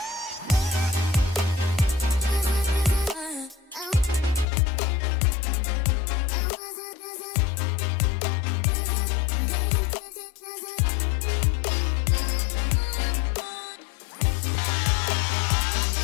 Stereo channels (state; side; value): drops out; right; at 4.5 s